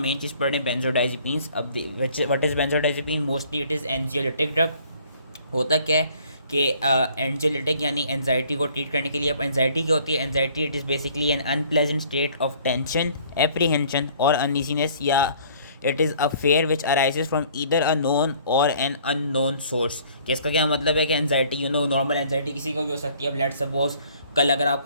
मेन चीज़ पढ़ रहे हैं बेंजोडाइज़ेपीन्स। अब what is benzodiazepine? Mostly it is anxiolytic drug. होता क्या है कि एंजियोलिटिक यानी एनजाइटी को ट्रीट करने के लिए। अब एनजाइटी क्या होती है? Anxiety it is basically N unpleasant state of tension, apprehension और अनईजीनेस, या it is a fear which arises from either a known और एन अननोन सोर्स। कि इसका क्या मतलब है कि एनजाइटी नॉर्मल एनजाइटी किसी को भी हो सकती है। अब लेट्स सपोज कल अगर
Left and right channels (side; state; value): both; inverted; correlation -0.56